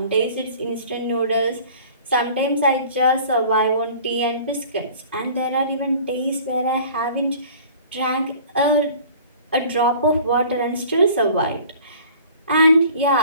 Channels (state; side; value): inverted; both; correlation -0.47